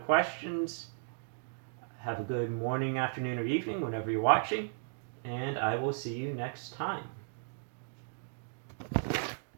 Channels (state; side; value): silent; left; digital silence